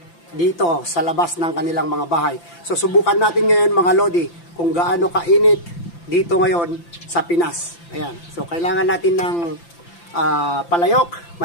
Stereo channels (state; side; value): late; right; 5.9 ms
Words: dito sa labas ng kanilang mga bahay. So subukan natin ngayon mga lodi kung gaano kainit dito ngayon sa Pinas. Ayan. So kailangan natin ng palayok,